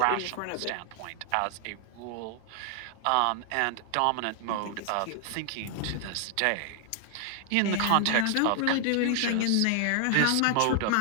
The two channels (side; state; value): both; different; correlation 0.00